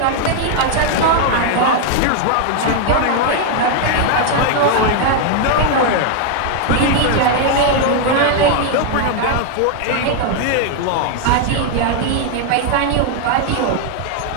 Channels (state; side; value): different; both; correlation 0.00